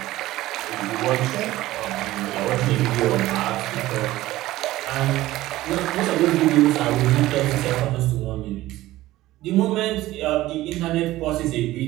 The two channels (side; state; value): left; quieter; 16.5 dB